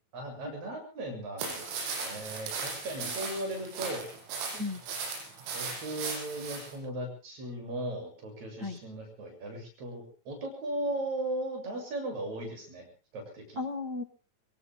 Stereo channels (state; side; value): late; left; 9.1 ms